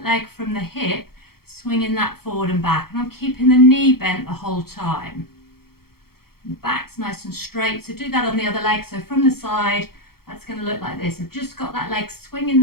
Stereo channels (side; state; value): right; late; 0.94 ms